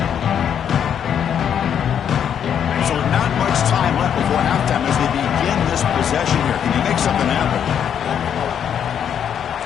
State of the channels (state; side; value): quieter; right; 8.6 dB